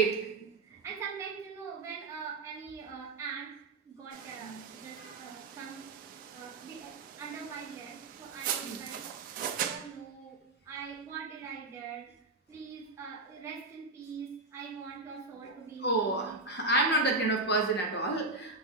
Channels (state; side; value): quieter; left; 3.2 dB